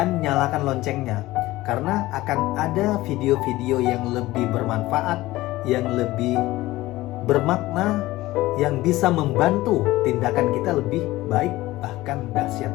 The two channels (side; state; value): right; quieter; 17.7 dB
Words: nyalakan loncengnya, karena akan ada video-video yang lebih bermanfaat, yang lebih bermakna, yang bisa membantu tindakan kita lebih baik, bahkan dahsyat